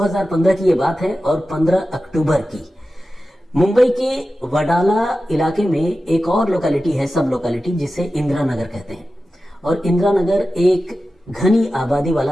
की यह बात है और 15 अक्टूबर की मुंबई के वडाला इलाके में एक और लोकेलिटी है, सब लोकेलिटी, जिसे इंदिरा नगर कहते हैं। और इंदिरा नगर एक घनी आबादी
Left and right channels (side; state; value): both; normal; correlation 0.93